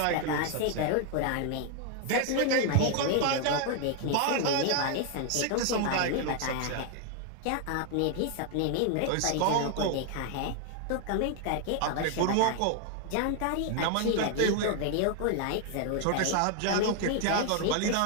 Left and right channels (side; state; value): both; different; correlation 0.00